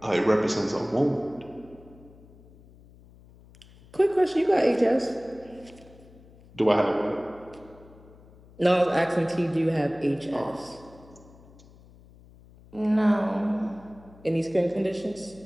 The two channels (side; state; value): left; noise; hum, 24 dB below the sound